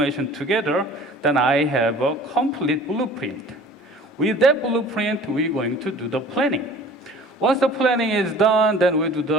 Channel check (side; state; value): both; normal; correlation 0.46